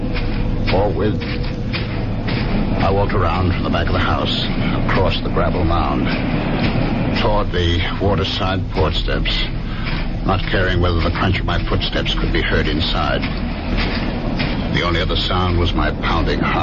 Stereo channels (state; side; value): identical; both; correlation 1.00